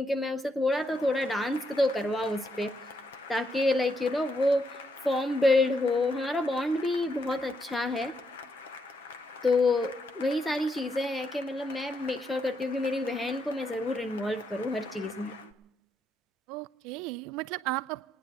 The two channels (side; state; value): both; normal; correlation 0.78